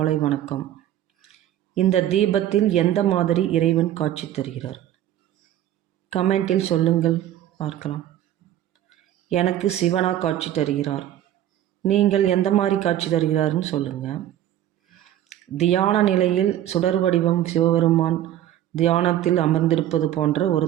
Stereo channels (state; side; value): quieter; left; 12.1 dB